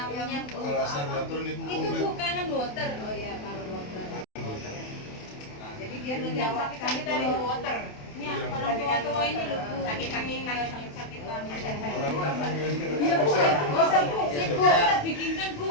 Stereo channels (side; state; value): right; late; 28 ms